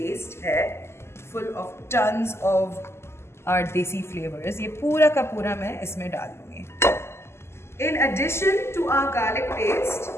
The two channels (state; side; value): late; right; 0.12 ms